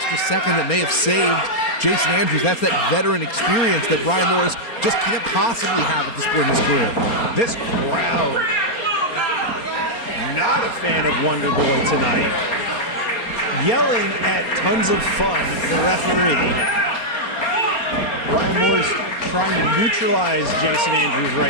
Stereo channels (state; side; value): late; right; 4.3 ms